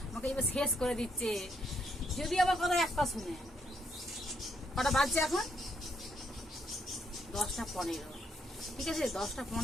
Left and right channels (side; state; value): both; normal; correlation 0.75